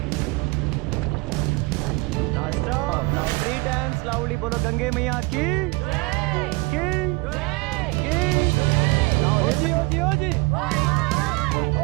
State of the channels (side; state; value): left; quieter; 25.2 dB